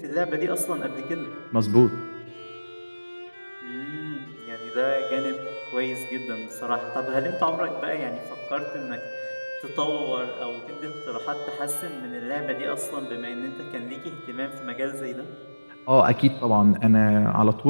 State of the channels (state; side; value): inverted; both; correlation -1.00